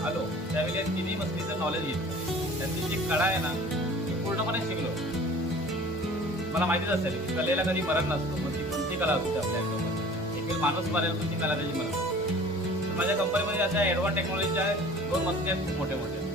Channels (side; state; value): both; normal; correlation 0.45